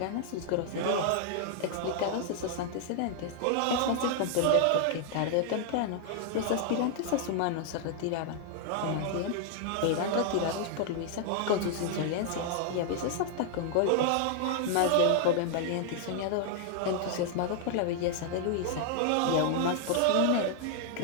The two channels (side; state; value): both; different; correlation 0.00